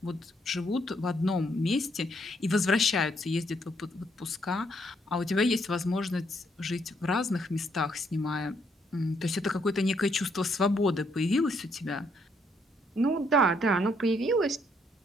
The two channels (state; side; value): normal; both; correlation 0.72